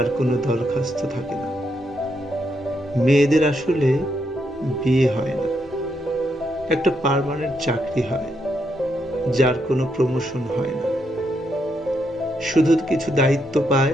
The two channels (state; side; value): normal; both; correlation 0.79